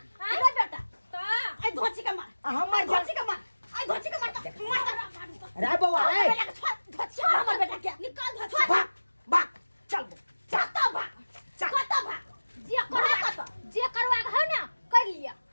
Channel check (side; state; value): both; inverted; correlation -1.00